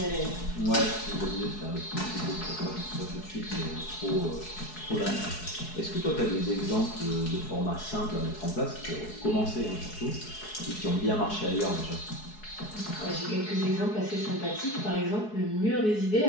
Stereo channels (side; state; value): right; late; 4.7 ms